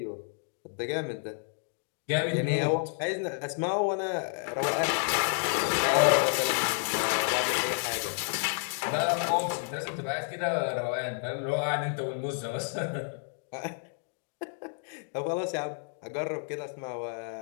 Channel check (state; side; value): silent; right; 58 dB below the other